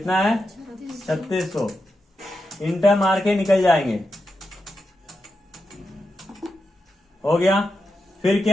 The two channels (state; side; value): normal; both; correlation 0.87